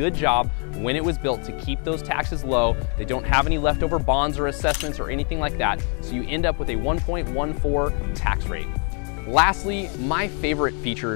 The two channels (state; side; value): quieter; right; 39.1 dB